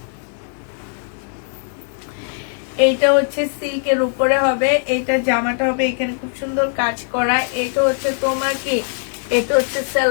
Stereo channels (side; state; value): right; silent; digital silence